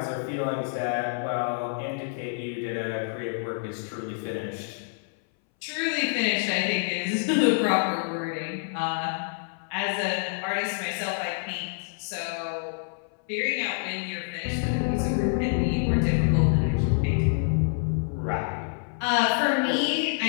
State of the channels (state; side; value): silent; right; 60 dB below the other